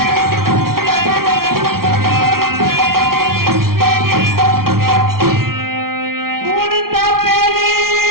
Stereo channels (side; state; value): left; late; 0.93 ms